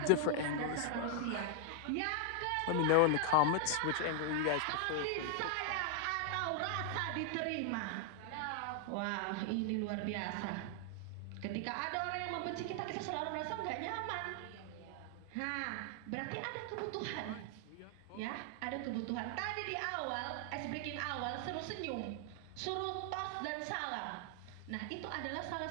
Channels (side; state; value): both; different; correlation 0.00